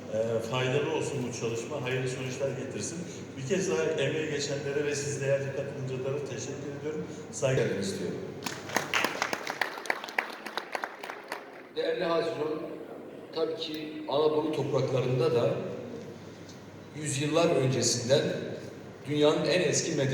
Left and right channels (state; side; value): identical; both; correlation 1.00